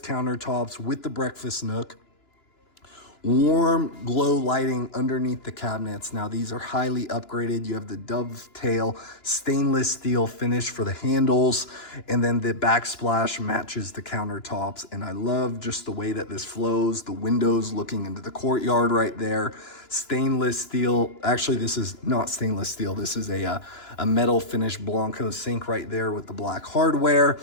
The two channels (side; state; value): right; late; 2.9 ms